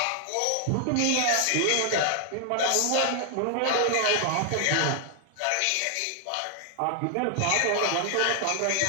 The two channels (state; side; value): different; both; correlation 0.00